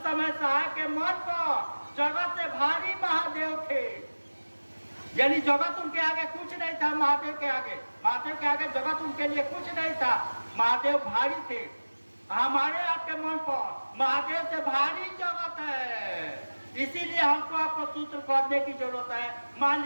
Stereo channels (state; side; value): inverted; both; correlation -1.00